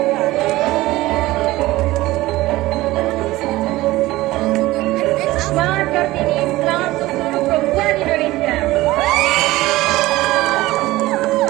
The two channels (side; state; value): left; quieter; 18.1 dB